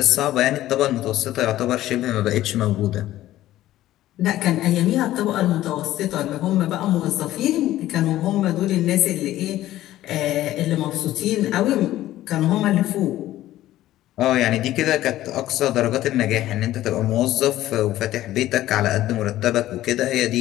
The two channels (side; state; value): right; quieter; 14.4 dB